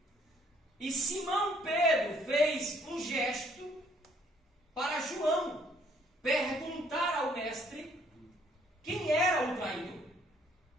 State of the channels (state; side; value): normal; both; correlation 0.63